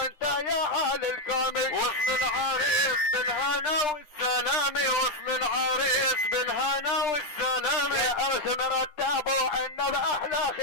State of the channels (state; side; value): late; right; 10 ms